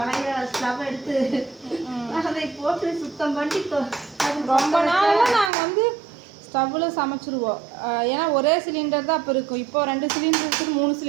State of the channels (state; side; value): drops out; left; at 5.5 s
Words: ஸ்டவ் எடுத்து அதை போட்டு சுத்தம் பண்ணி ரொம்ப நாளாக நாங்கள் வந்து ஸ்டவ்வில் சமைச்சிருவோம். ஏன்னா ஒரே சிலிண்டர் தான் அப்போ இருக்கும். இப்போ 2 சிலிண்டர் இருக்குது, 3